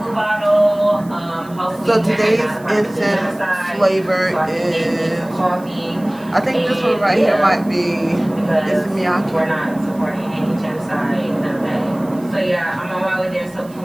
Bottle. So today's incense flavor is coffee. I think this one right here might be Miyake. We're not supporting any genocide, none of that. So yeah, I'm on my way there so we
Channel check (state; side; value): noise; right; hiss, 25 dB below the sound